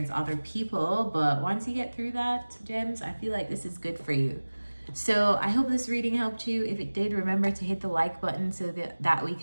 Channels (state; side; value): inverted; both; correlation -1.00